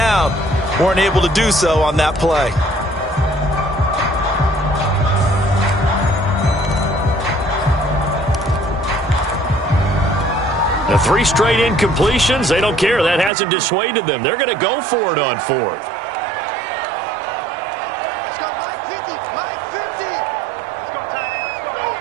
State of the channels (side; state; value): left; drops out; at 13.3 s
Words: Weren't able to do so on that play. The 3 straight incompletions, they don't care. That hasn't dissuaded them. They're going to go for it on 4th. Let's go, Mike 50. Mike 50. Let's go, Ty. Let's go right